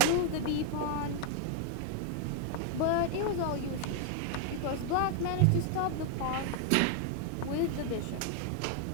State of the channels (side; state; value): both; different; correlation 0.00